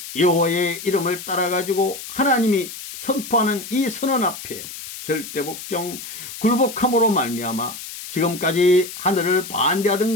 여호와의 이름을 따라가지고 하나님이 선포하는 이 선언 앞에 절대 복종 굴복함으로 말미암아 지금까지 하늘을 반대하던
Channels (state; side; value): noise; left; hiss, 11 dB below the sound